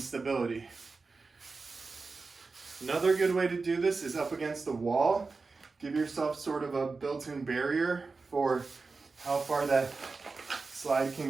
Another good way to do this is up against the wall. Give yourself sort of a built-in barrier for how far that slide can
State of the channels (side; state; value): left; quieter; 4.2 dB